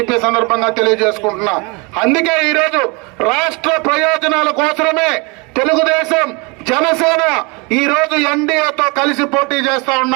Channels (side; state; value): left; quieter; 29.2 dB